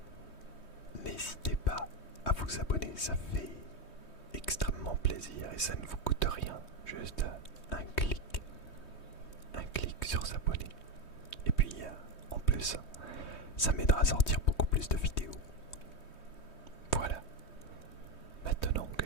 n'hésitez pas à vous abonner, ça fait extrêmement plaisir et ça ne vous coûte rien, juste un clic sur s'abonner. Et puis en plus, ça m'aidera à sortir beaucoup plus de vidéos. Voilà, maintenant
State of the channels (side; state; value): right; late; 3.2 ms